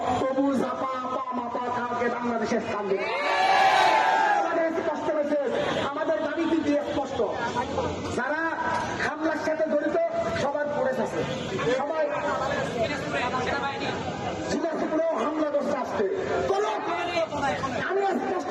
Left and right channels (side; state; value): both; identical; correlation 1.00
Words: তবু জাপা আপা মাপা কাউকে বাংলাদেশে স্থান দিব। আমাদের স্পষ্ট হয়েছে, আমাদের দাবি কি স্পষ্ট। যারা হামলার সাথে জড়িত সবার পড়ে আছে, সবাই দিনাজপুরেও হামলা করতে আসছে। আমি স্পষ্ট